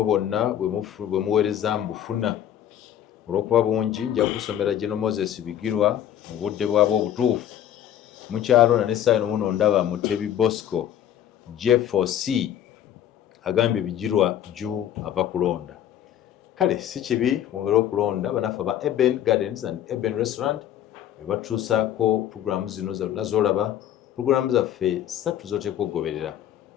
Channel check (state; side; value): quieter; right; 10.8 dB